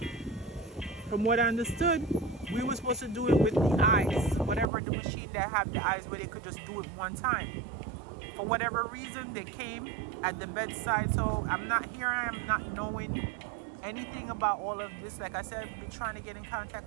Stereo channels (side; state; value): left; drops out; at 4.7 s